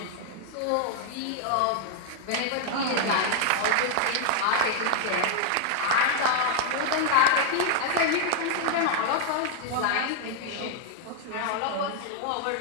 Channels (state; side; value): different; both; correlation 0.00